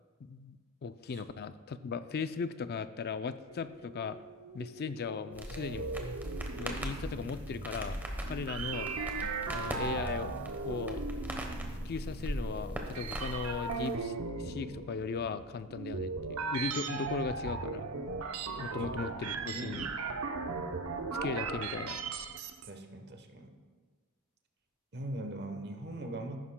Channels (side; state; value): both; normal; correlation 0.24